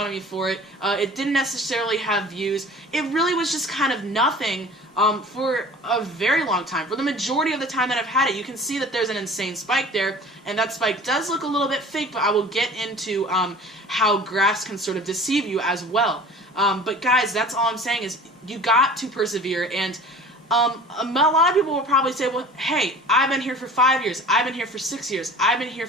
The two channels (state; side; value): normal; both; correlation 0.43